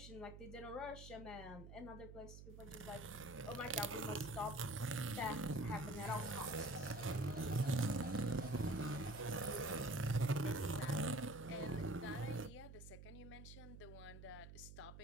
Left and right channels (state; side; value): noise; right; hum, 13 dB below the sound